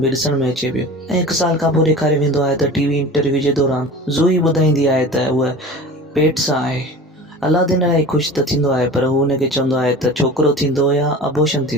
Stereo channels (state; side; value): normal; both; correlation 0.37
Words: बि ॾिसण में अचे पियो ऐं 1 साल खां पोइ ॾेखारे वेंदो आहे त टीवी इंटरव्यू जे दौरान ज़ोई ॿुधाईंदी आहे त उहा पेट सां आहे। अलादीन इलाही ख़ुशि त थींदो आहे, पर हू हुनखे चवंदो आहे त छोकिरो थींदो या अबॉर्शन